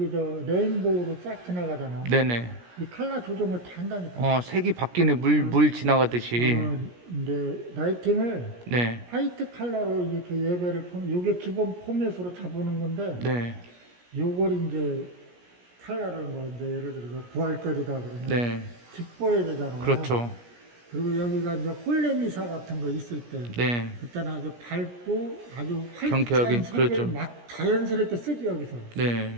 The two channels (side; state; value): left; late; 17 ms